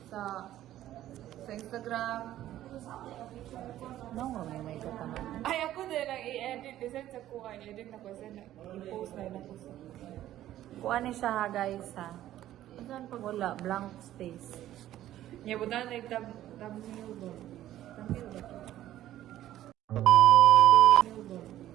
Sa Instagram. No, may kataman. Ay, ako din ang i-edit. Design sa kuha. I-edit ako sa i-post na ako sa. Kuan ni siya ha, guys ha. Saan pag wala? Blank space. Niya, buta na thumbnail ba? Thumbnail ba ito?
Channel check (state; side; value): quieter; left; 13.2 dB